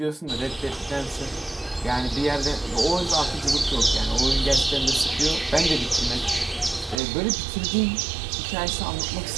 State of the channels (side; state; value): left; drops out; at 7.0 s